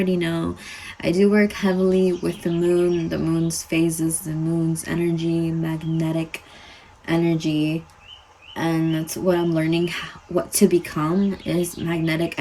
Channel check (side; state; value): both; identical; correlation 1.00